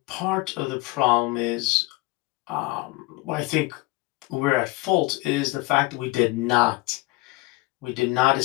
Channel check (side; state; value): right; quieter; 22.0 dB